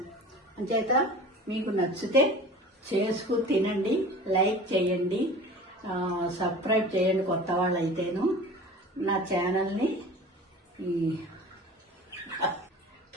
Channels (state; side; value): normal; both; correlation 0.40